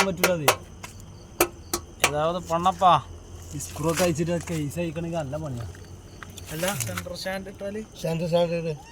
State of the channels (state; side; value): identical; both; correlation 1.00